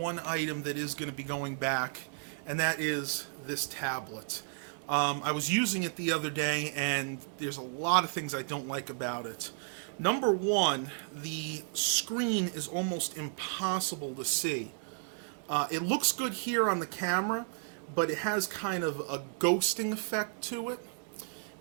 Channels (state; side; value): silent; left; digital silence